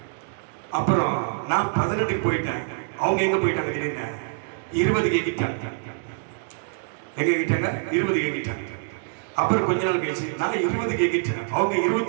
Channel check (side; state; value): left; silent; digital silence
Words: அப்புறம் நான் 18க்கு போயிட்டேன். அவங்க எங்கே போயிட்டாங்க திடீர்னு? 20க்கு எங்கிட்டாங்க. எங்கே எங்கிட்டாங்க? 20க்கு எங்கிட்டாங்க. அப்புறம் கொஞ்ச நாள் கழிச்சு நான் 20 கேக்கிட்டேன், அவங்க